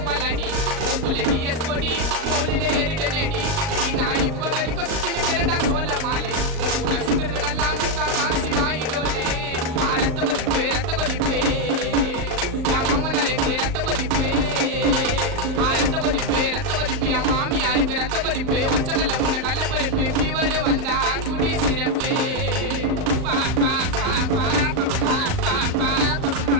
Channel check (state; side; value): late; left; 38 ms